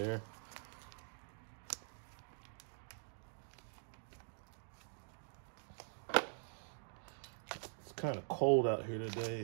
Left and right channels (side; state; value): left; silent; digital silence